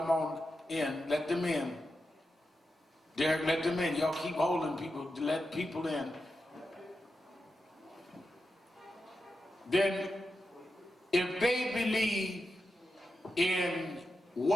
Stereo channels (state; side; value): normal; both; correlation 0.89